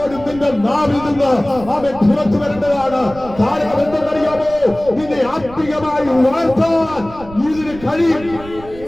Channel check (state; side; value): noise; right; rumble, 17 dB below the sound